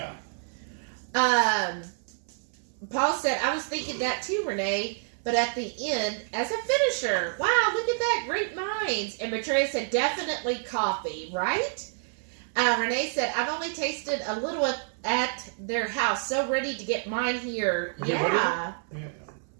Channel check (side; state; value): left; silent; 58 dB below the other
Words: Paul said, I was thinking that too, Renee, but at the end, as a finisher. Wow, look at that. Great minds. And Maitreya said, definitely coffee, right? Renee said, I've only tasted a little at their house. So ready to get mine here. Yeah.